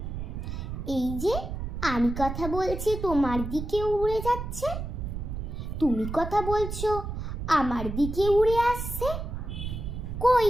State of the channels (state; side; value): noise; right; rumble, 6 dB below the sound